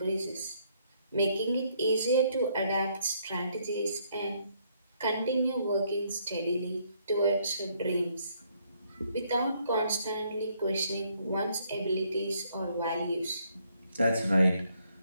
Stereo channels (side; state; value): both; inverted; correlation -0.70